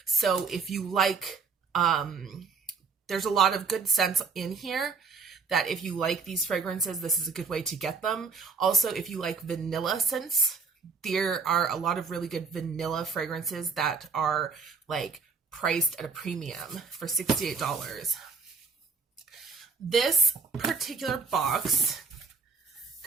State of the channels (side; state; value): left; quieter; 5.0 dB